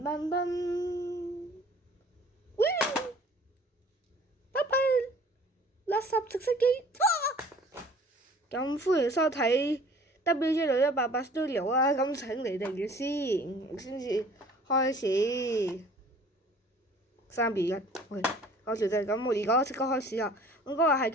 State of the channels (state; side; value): normal; both; correlation 0.50